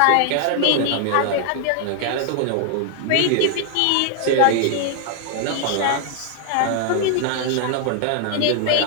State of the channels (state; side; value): different; both; correlation 0.00